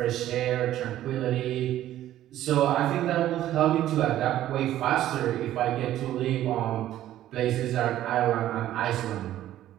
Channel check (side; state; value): left; quieter; 13.0 dB